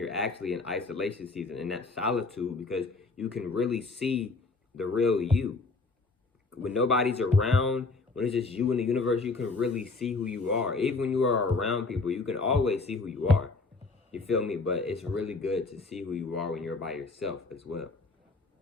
actually in isolation season and that solitude, because you can really see the real you. When nobody's around, when it's just you in the universe, you can really see who you are. Even when you are around people, you can always see who you are. You feel me? But it's really good to see who you are when you're by yourself as well.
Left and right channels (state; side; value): quieter; right; 3.8 dB